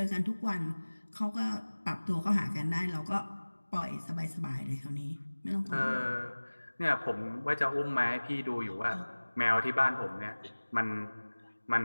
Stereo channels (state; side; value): inverted; both; correlation -1.00